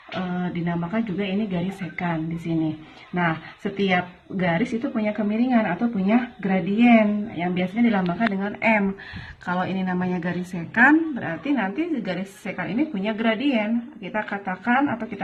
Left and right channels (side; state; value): both; identical; correlation 1.00